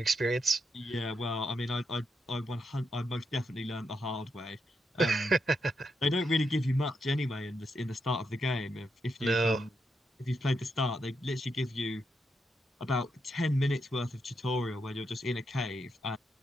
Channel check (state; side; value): normal; both; correlation 0.82